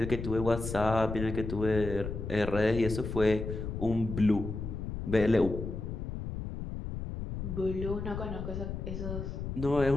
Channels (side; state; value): left; noise; rumble, 6 dB below the sound